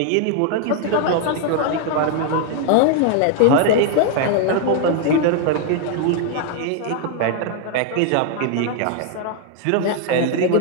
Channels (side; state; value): both; different; correlation 0.00